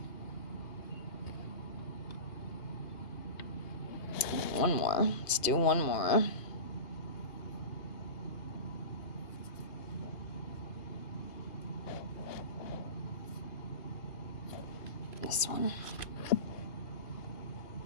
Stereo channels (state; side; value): late; right; 2.1 ms